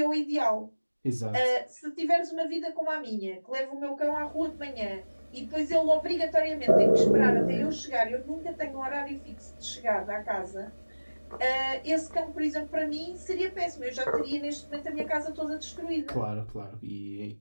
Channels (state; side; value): inverted; both; correlation -1.00